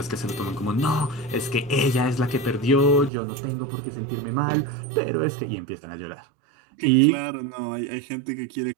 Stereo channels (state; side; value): drops out; left; at 3.1 s